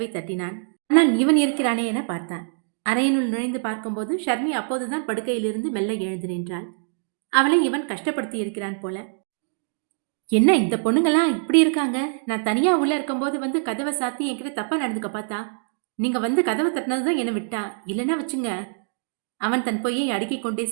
தட்டினான். ஆனால் இவன் இருக்கிறானே என பார்த்தான். அறையினுள் நுழைந்து பார்க்கும்போது ஷர்மி அப்போதுதான் படுக்கையிலிருந்து மெல்ல எழுந்து நின்றாள். அவளை இவன் கஷ்டப்படுத்தி இருக்கிறான் போல. என்ன இந்த பொண்ணுங்கெல்லாம் இப்படி இருக்காங்க? நான் தனியா உள்ள இருக்கும்போது வந்து கதவை சாத்தி என்கிட்ட தப்பா நடந்துக்க பார்த்தா, நீங்க வந்து கதவை தட்டினதுதான் என்னை விட்டா, இல்லைன்னா வச்சுங்க. அவன் தன் பொய்யை அடுக்கிக் கொண்டே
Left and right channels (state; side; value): silent; left; digital silence